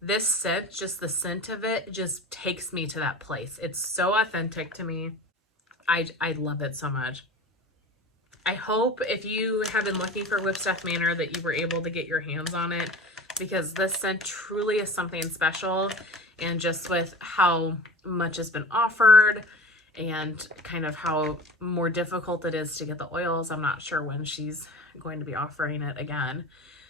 this scent, just the scent of it, just takes me to that place. It's so authentic to me. I love it so much. I hope if you have been looking for Whipstuff Manor that you were able to get your hands on it, because this scent truly is something special. And just with how much has been offered and kind of how more difficult it is to get the oils, I'm not sure when she's going to be offering it again.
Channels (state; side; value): normal; both; correlation 0.37